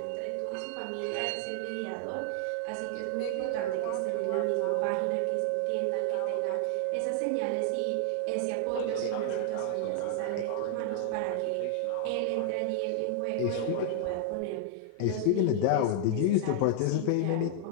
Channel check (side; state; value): both; different; correlation -0.01